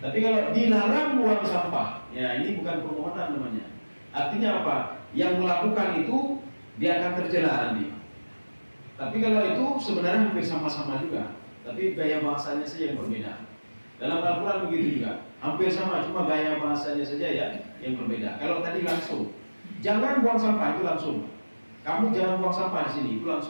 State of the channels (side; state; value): both; inverted; correlation -1.00